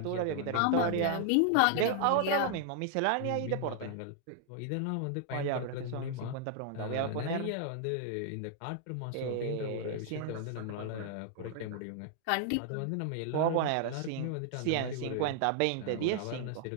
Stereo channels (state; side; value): different; both; correlation 0.00